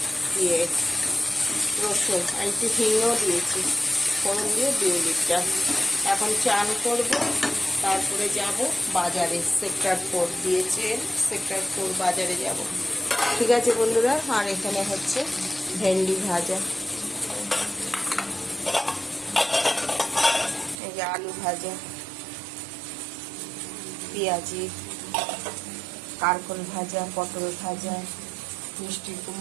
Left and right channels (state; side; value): drops out; left; at 20.8 s